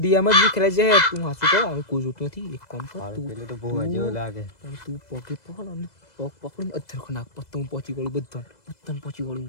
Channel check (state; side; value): late; right; 2.0 ms